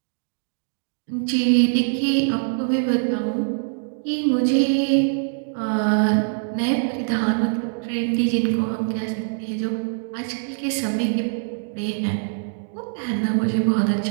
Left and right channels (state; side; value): silent; left; digital silence